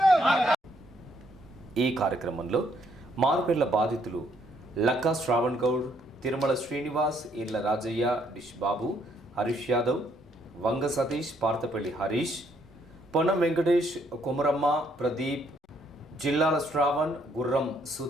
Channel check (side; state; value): both; normal; correlation 0.69